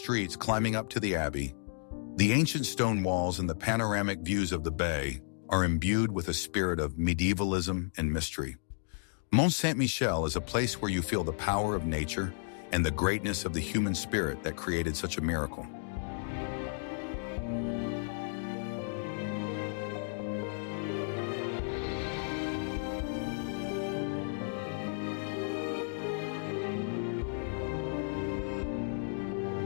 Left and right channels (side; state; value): right; silent; digital silence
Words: climbing up to the abbey, the ancient stone walls and the panoramic views of the bay are imbued with a spirit of medievalism and mystery. Mont Saint-Michel is a place where you feel the power of nature and the greatness of the human spirit that created such a miracle.